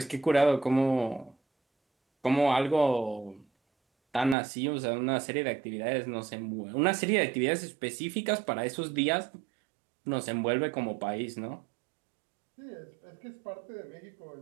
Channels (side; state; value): left; drops out; at 4.4 s